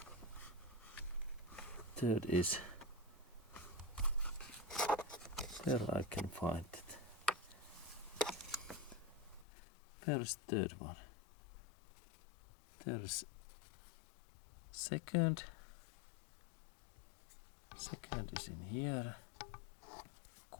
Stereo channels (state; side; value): drops out; right; at 9.5 s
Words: Third is where I can find it. Where is third one? There is second. Second is in here.